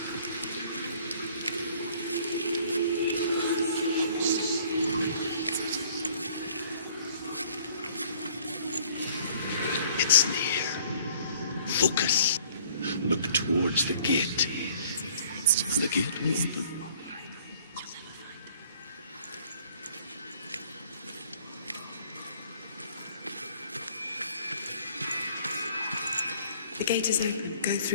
It's near. Focus. Look towards the gate. The gate will open. The gate is open. Go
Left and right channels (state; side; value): inverted; both; correlation -0.56